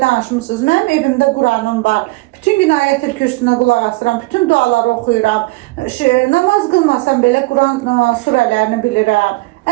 danışmısınız. Mənim evimdə Quranım var. Bütün gün ayət-el kürsüsünə qulaq asıram, bütün duaları oxuyuram. Namaz qılmasam belə Quran surələrini bilirəm.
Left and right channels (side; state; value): left; quieter; 22.8 dB